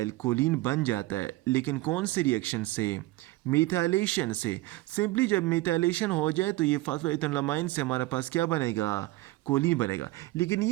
कोलिन बन जाता है। लेकिन कौन से रिएक्शन से, मिथाइलेशन से। सिंपली जब मिथाइलेशन हो जाए तो ये फास्फोइथेनोलामाइन से हमारे पास क्या बनेगा, कोलिन बनेगा। लेकिन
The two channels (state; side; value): quieter; left; 19.1 dB